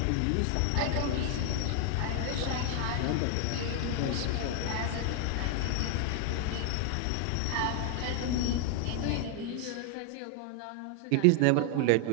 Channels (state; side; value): different; both; correlation 0.00